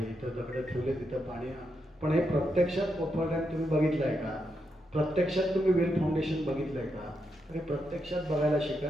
इथं दगडं ठेवले तिथं पाणी. पण हे प्रत्यक्षात कोपर रॅम्प तुम्ही बघितलं आहे का? प्रत्यक्षात तुम्ही वेल फाउंडेशन बघितलं आहे का? तर हे प्रत्यक्षात बघायला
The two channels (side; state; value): both; normal; correlation 0.83